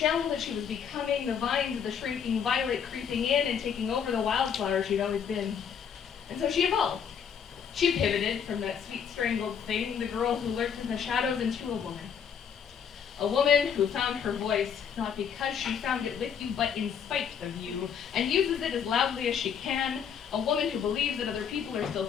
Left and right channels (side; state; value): right; quieter; 7.5 dB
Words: that she was becoming, the vines of the shrinking violet creeping in and taking over the wildflower she'd always been. And so she evolved. She pivoted from that sweet strangled thing, the girl who lurked in the shadows, into a woman. A woman who found her voice, not because she found it with you, but in spite of you, and uses it as loudly as she can. A woman who believes that other people are still